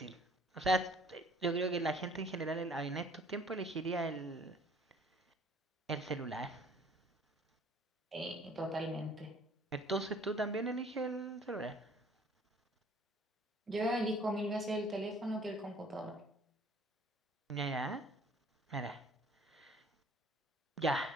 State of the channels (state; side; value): normal; both; correlation 0.55